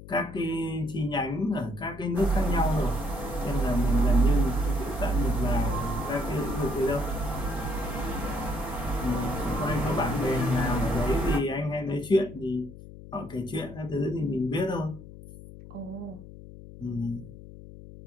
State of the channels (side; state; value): left; noise; hum, 16 dB below the sound